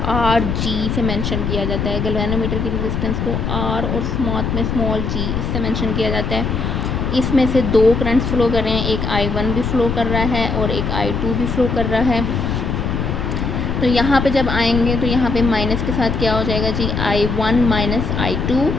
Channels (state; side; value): noise; left; rumble, 1 dB below the sound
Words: RG से मेंशन किया जाता है। गैल्वेनोमीटर की रेजिस्टेंस को R और स्मॉल g इससे मेंशन किया जाता है। इसमें से 2 करंट्स फ्लो कर रहे हैं, एक I1 भी फ्लो कर रहा है और एक I2 भी फ्लो कर रहा है। तो यहाँ पे जब आएंगे तो यहाँ पे माइनस के साथ क्या हो जाएगा जी, I1 माइनस I2